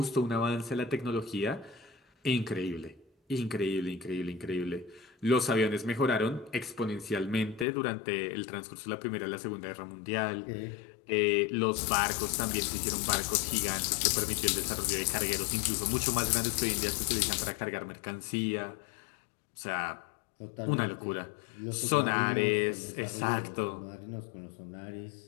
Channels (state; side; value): drops out; right; at 7.7 s